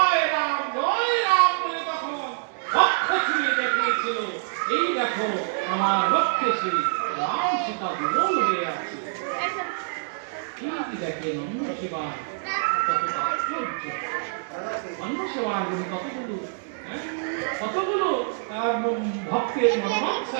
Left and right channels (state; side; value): silent; left; digital silence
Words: রাম বলে তখন বক্ষ ছুঁয়ে দেখিয়েছিল, এই দেখো আমার বক্ষে সেই রাম সীতা দুর্বল হয়ে আছে। এই দেখেন অন্য সেবা কত তাৎপর্য, অন্য সেবা কতগুলো ভক্তের